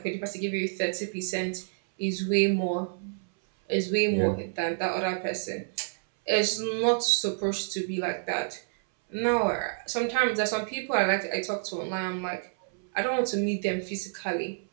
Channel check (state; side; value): silent; left; 59 dB below the other